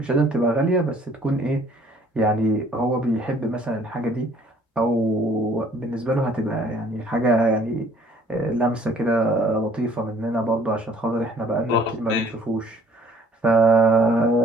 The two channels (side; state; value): both; normal; correlation 0.58